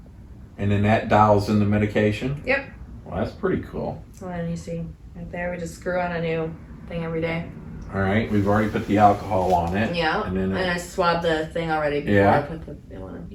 and then that dials in the medication? Yep. Well, that's pretty cool. Well, and you see right there, we just screw on a new thing every day. All right, we've already put the alcohol on it. Yeah. And then And I swabbed the thing already before Yeah. I put the new one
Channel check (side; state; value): both; identical; correlation 1.00